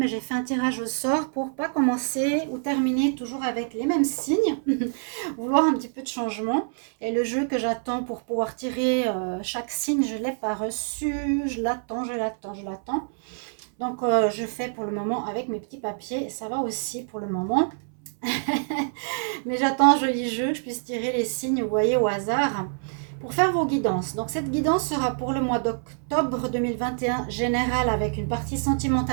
j'ai fait un tirage au sort pour pas commencer ou terminer toujours avec les mêmes signes, vouloir un petit peu de changement. Et le jeu que j'attends pour pouvoir tirer chaque signe, je l'ai pas reçu, je l'attends, je l'attends. Donc, je fais pour le moment avec mes petits papiers. Ça va aussi pour le moment. Mais j'attends un joli jeu, que je puisse tirer les signes, vous voyez, au hasard, pour faire vos guidances. Donc, cette guidance sera pour le mois d'octobre 2021 général avec une partie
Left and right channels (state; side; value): silent; left; 61 dB below the other